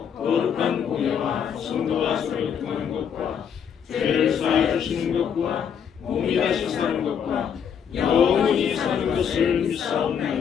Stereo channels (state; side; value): quieter; right; 7.8 dB